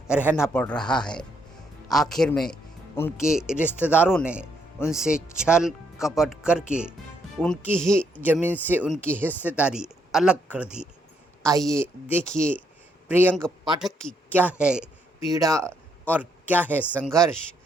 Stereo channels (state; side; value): normal; both; correlation 0.74